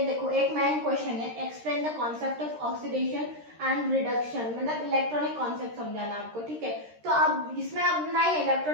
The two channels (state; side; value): late; left; 13 ms